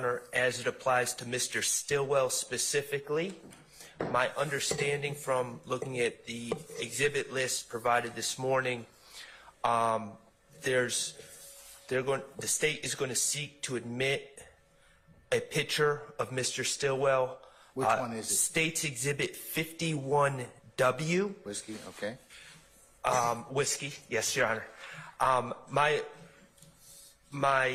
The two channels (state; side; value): identical; both; correlation 1.00